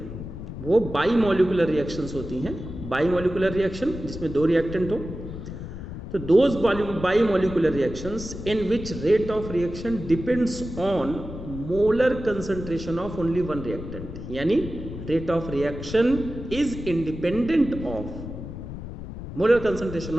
वो बाई मॉलिकुलर रिएक्शंस होती हैं। बाई मॉलिकुलर रिएक्शन जिसमें 2 रिएक्टेंट हो, तो those bimolecular reactions in which rate of reaction depends on molar concentration of only one reactant, यानी rate of reaction is independent of molar concentration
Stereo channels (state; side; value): noise; left; rumble, 9 dB below the sound